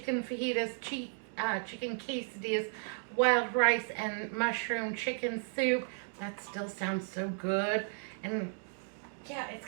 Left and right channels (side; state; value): left; silent; 55 dB below the other